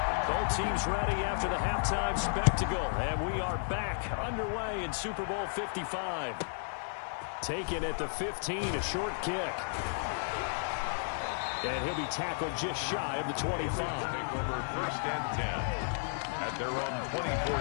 Both teams ready after the halftime spectacle, and we are back underway in Super Bowl 55. Taken at the 15, a short kick. And he'll be tackled just shy of the 25. Take over 1st and 10 at their own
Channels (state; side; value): silent; right; 56 dB below the other